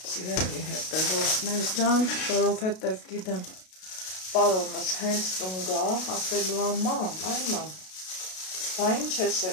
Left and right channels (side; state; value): right; late; 32 ms